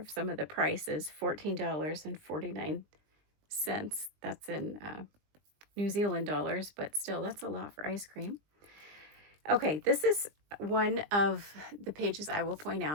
some of the prices, $14.49. That's in New Zealand dollars, but still, that's a lot for ice cream. Okay, this is one of the pages I will point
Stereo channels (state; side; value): late; left; 20 ms